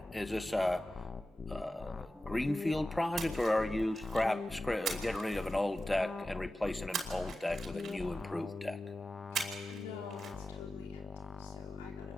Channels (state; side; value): normal; both; correlation 0.93